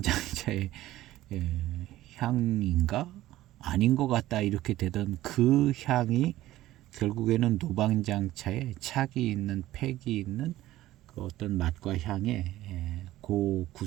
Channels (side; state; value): left; quieter; 15.3 dB